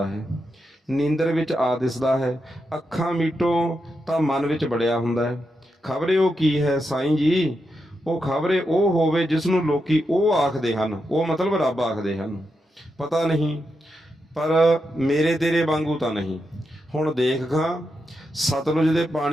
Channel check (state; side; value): normal; both; correlation 0.86